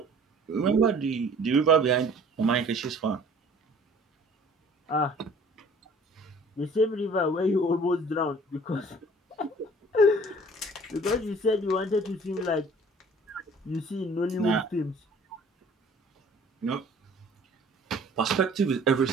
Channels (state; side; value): normal; both; correlation 0.51